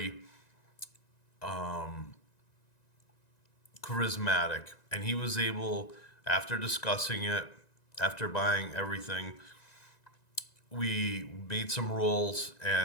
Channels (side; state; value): right; late; 1.9 ms